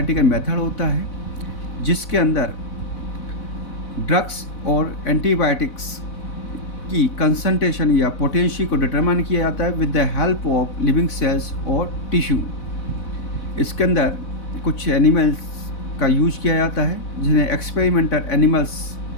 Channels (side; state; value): right; late; 4.0 ms